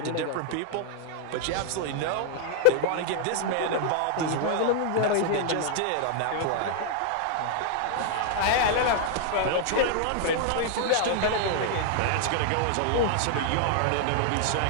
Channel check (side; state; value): both; different; correlation -0.01